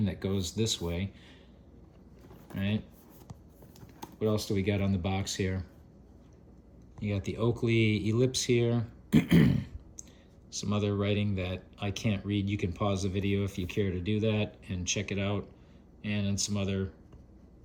that goes this way. Right? What else do we got on the box here? You got the Oakley ellipse here. Some other writing that I can't read. You can pause the video if you care to do that and check it out. And then some other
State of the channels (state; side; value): identical; both; correlation 1.00